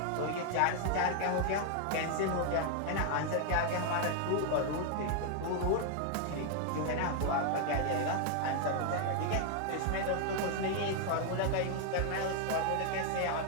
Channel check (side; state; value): both; different; correlation 0.00